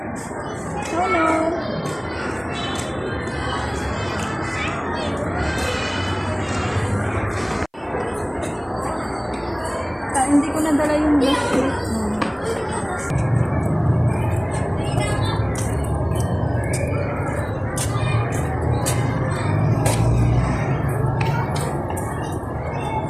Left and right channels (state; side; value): identical; both; correlation 1.00